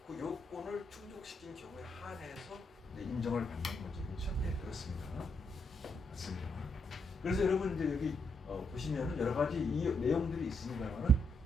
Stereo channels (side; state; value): both; normal; correlation 0.77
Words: 그 요건을 충족시킨 경우에 한해서 인정을 받는 거죠. 그렇죠? 네, 그렇습니다. 맞습니다. 그래서 여러분 이제 여기 보시면은 여러 가지 이 내용들이 있습니다만은